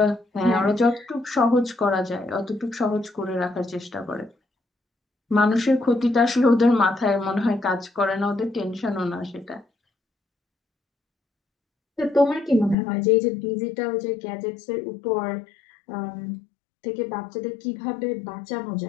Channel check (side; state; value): right; drops out; at 12.8 s